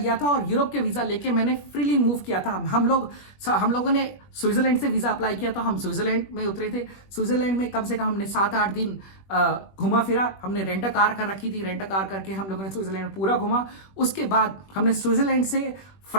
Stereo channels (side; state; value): right; late; 21 ms